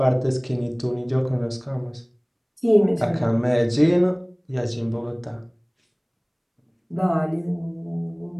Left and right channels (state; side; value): identical; both; correlation 1.00